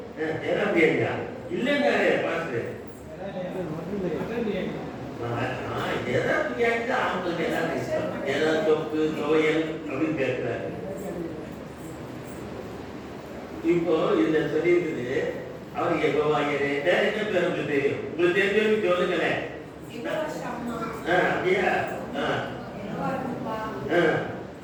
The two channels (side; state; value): both; identical; correlation 1.00